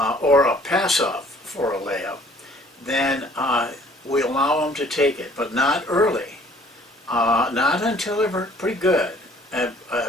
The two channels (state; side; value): normal; both; correlation 0.56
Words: or a pass-off for a layup, then we allow him to take it, but not early. Not until they're pretty good at